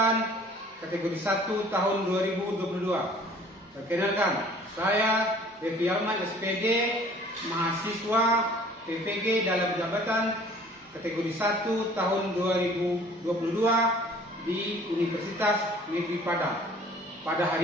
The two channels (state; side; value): normal; both; correlation 0.52